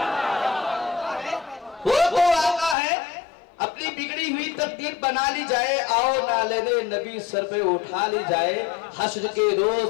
वो तो आका है, अपनी बिगड़ी हुई तकदीर बना ली जाए, आओ नाले नबी सर पे उठा ली जाए। हश्र के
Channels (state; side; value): drops out; right; at 2.8 s